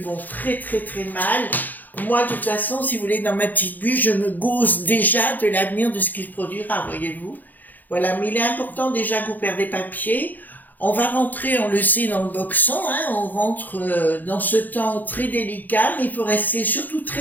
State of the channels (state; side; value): late; right; 0.084 ms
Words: vont très très très mal. Moi, de toute façon, si vous voulez, dans ma petite bulle, je me gausse déjà de l'avenir de ce qui se produira, voyez-vous. Voilà, mais il est important déjà que vous perdez papier. On va rentrer, on le sait, dans le boxon, hein, on rentre dans ce temps très délicat, mais il faut rester surtout